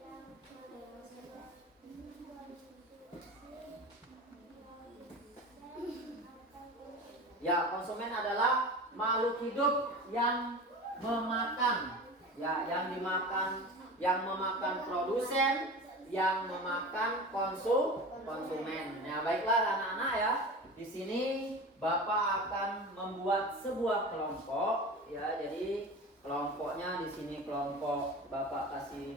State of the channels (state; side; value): normal; both; correlation 0.32